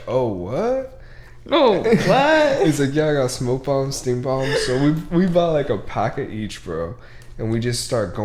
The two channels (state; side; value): identical; both; correlation 1.00